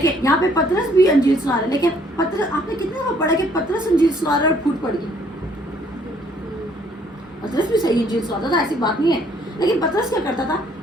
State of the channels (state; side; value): normal; both; correlation 0.63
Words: یہاں پہ پطرس بھی انجیل سنا رہے ہیں، لیکن پطرس، آپ نے کتنے دفعہ پڑھا کہ پطرس انجیل سنا رہا ہے اور پھوٹ پڑ گئی؟ پطرس بھی صحیح انجیل سناتا تھا، ایسی بات نہیں ہے، لیکن پطرس کیا کرتا تھا،